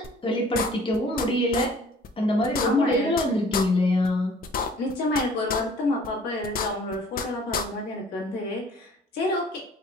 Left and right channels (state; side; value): normal; both; correlation 0.53